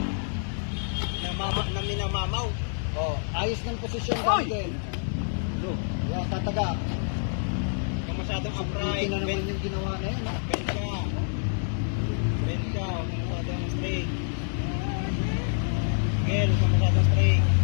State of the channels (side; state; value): right; silent; digital silence